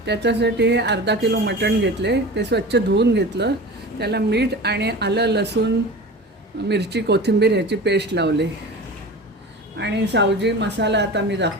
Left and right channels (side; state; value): both; normal; correlation 0.34